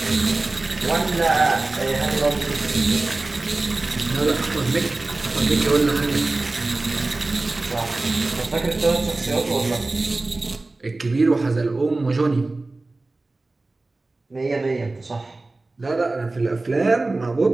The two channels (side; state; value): left; quieter; 3.2 dB